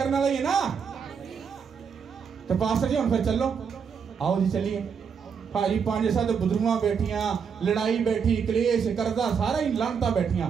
वाला ही है ना। तो पास्टर जी हम फिर चलो, आओ जी चलिए। भाजी 5-7 बुजुर्गां बैठियां, लड़ाई बैठी, कलेश करदा, सारा ही लानता बैठियां,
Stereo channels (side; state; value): left; quieter; 6.5 dB